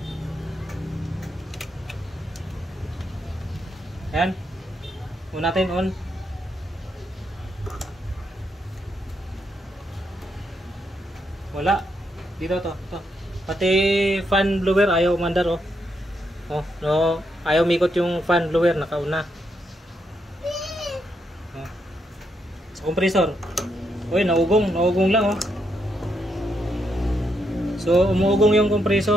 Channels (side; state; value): both; normal; correlation 0.79